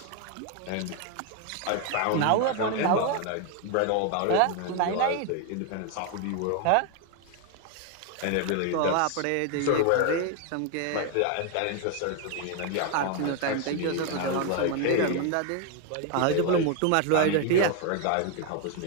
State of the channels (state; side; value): different; both; correlation 0.01